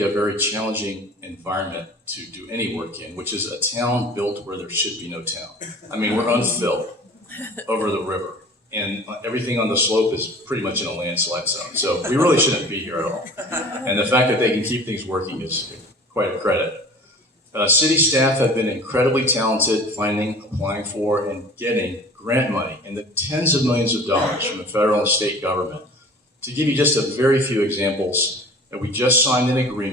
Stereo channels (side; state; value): both; normal; correlation 0.43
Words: a very challenging environment to do any work in, which is a town built where there should be no town. I mean, we're unfilled over the river, and everything on the slope is pretty much in a landslide zone. So we really shouldn't be here at all. And the fact that they can keep things working is quite a credit. City staff have been incredibly talented finding, applying for, and getting grant money in the tens of millions of dollars from the federal and state government. To give you just a very few examples, we just signed an